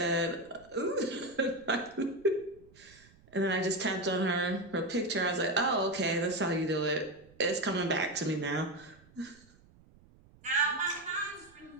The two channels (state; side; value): noise; right; rumble, 26 dB below the sound